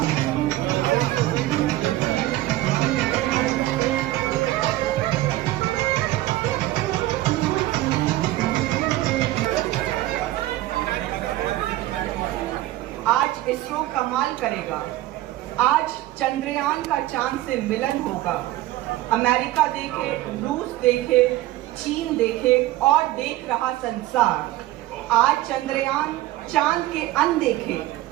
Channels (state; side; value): quieter; left; 16.1 dB